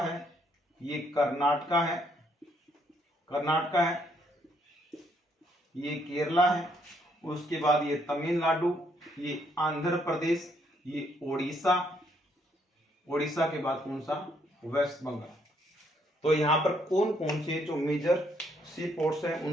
ये कर्नाटका है, कर्नाटका है, ये केरला है, उसके बाद ये तमिलनाडु, ये आंध्र प्रदेश, ये ओडिशा, ओडिशा के बाद कौन सा, वेस्ट बंगाल। तो यहाँ पर कौन कौन से जो मेजर सी पोर्ट्स हैं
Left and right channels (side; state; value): both; normal; correlation 0.71